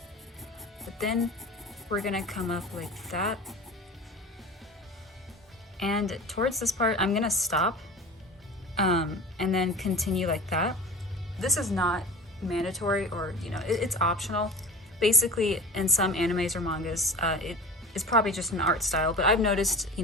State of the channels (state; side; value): normal; both; correlation 0.36